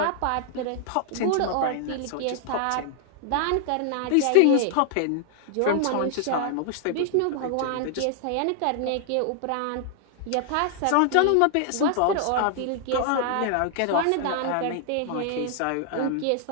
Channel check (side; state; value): both; different; correlation 0.00